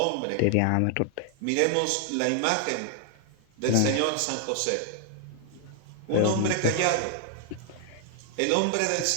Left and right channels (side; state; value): both; different; correlation 0.00